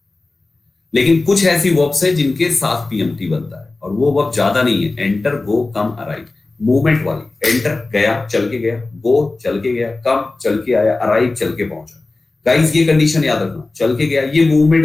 लेकिन कुछ ऐसी वर्ब्स है जिनके साथ पीएमटी बनता है, और वो वर्ब ज्यादा नहीं है, एंटर, गो, कम, अराइव, मूवमेंट वाली। एंटर गया, चल के गया, गो चल के गया, कम चल के आया, अराइव चल के पहुंचा। गाइस ये कंडीशन याद रखना, चल के गया, ये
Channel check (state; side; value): quieter; right; 3.3 dB